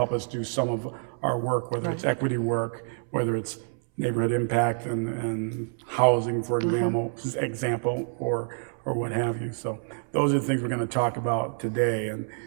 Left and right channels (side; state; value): left; silent; 60 dB below the other